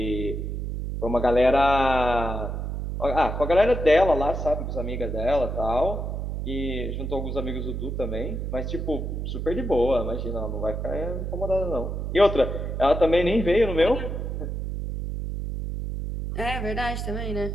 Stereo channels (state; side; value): noise; right; hum, 4 dB below the sound